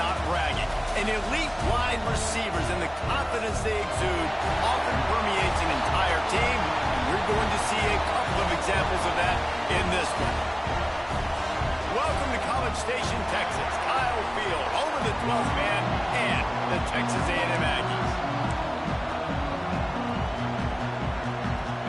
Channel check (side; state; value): both; identical; correlation 1.00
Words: bragging. And elite wide receivers and the confidence they exude often permeates an entire team. And we're going to see a couple of examples of that in this one. Welcome to College Station, Texas. Kyle Field, home of the 12th man and the Texas A&M Aggies.